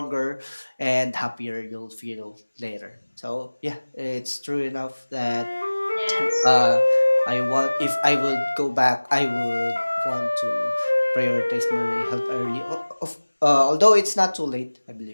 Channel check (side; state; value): both; inverted; correlation -1.00